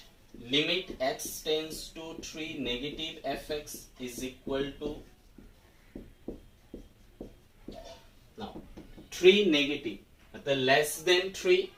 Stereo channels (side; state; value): both; identical; correlation 1.00